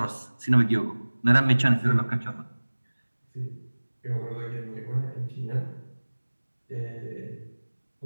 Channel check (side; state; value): both; inverted; correlation -1.00